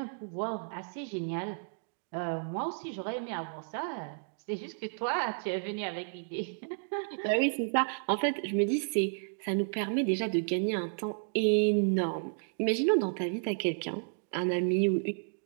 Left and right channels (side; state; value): left; silent; digital silence